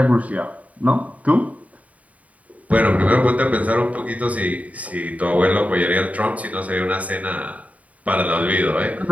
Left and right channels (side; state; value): left; late; 0.069 ms